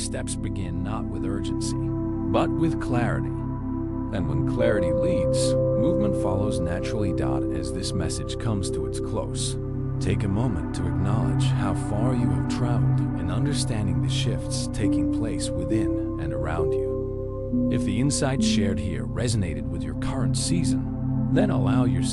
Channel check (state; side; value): identical; both; correlation 1.00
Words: steps begin not with urgency, but with clarity. And when clarity leads, movement follows naturally. As this message comes to its close, take a moment to acknowledge how far you have traveled in understanding the shifts taking place within and around you. If the insights shared here resonated with your current season, then allow